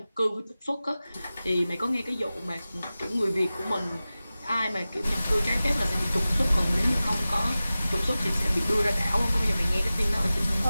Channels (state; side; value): inverted; both; correlation -0.96